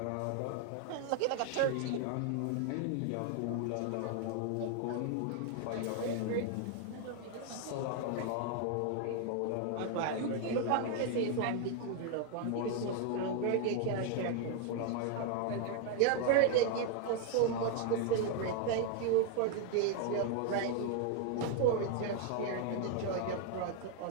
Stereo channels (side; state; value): both; different; correlation 0.00